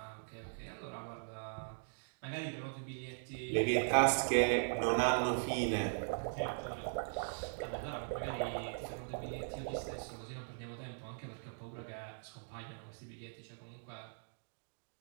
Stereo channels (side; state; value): left; silent; digital silence